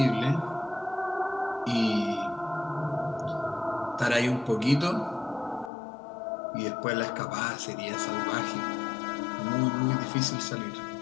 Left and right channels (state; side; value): drops out; right; at 5.7 s